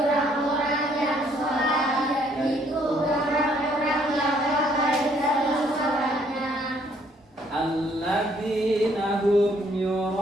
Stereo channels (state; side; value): normal; both; correlation 0.66